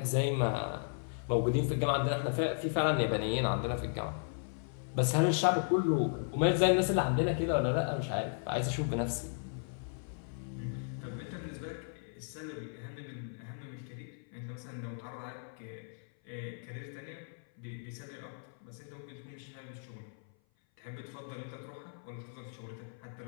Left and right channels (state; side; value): silent; right; 54 dB below the other